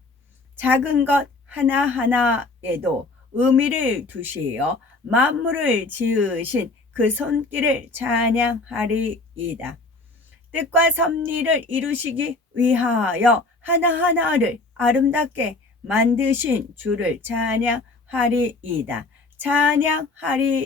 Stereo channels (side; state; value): right; quieter; 3.3 dB